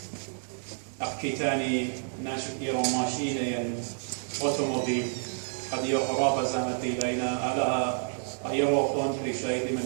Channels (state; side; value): silent; left; 58 dB below the other